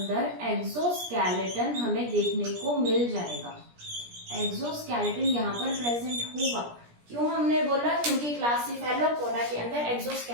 एक्सोस्केलेटन हमें देखने को मिल जाएगा। एक्सोस्केलेटन यहाँ पर प्रेजेंट होगा। क्यों हमने बोला, क्योंकि क्लासिफेलोपोडा के अंदर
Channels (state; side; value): late; left; 17 ms